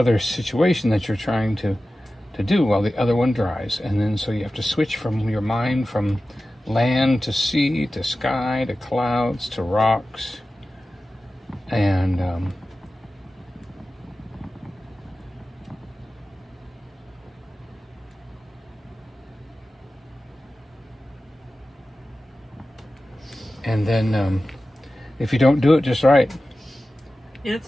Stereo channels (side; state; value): both; normal; correlation 0.95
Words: situation that you're trying to do while the other one dries. And then so you have to switch from your mind from land to sea to sky to clouds to rocks. And then if you don't do it just right,